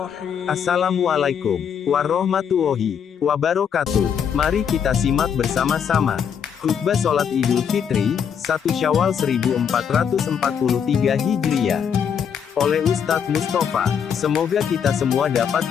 Assalamualaikum warahmatullahi wabarakatuh. Mari kita simak bersama-sama khutbah sholat Idul Fitri 1 Syawal 1443 Hijriah oleh Ustadz Mustafa. Semoga kita semua dapat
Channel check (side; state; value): right; quieter; 7.6 dB